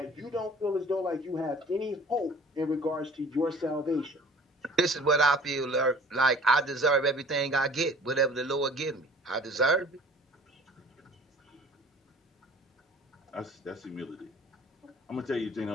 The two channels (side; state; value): both; normal; correlation 0.48